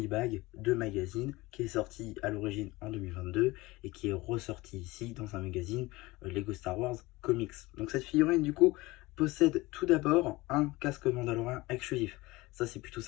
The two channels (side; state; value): right; quieter; 21.0 dB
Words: de magazine qui est sorti à l'origine en 2022 et qui est ressorti ici dans un magazine Lego Star Wars Comics. Donc cette figurine du coup possède tout d'abord un casque mandalorien exclusif. Ça c'est plutôt